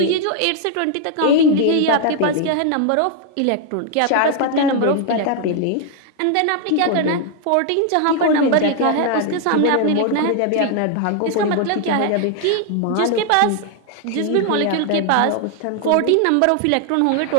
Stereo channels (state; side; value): different; both; correlation 0.00